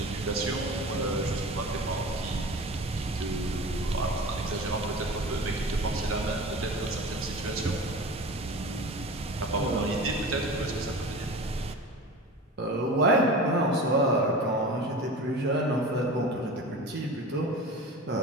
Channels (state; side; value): normal; both; correlation 0.34